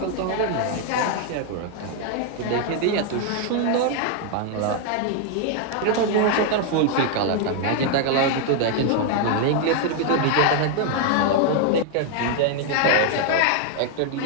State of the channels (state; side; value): different; both; correlation 0.00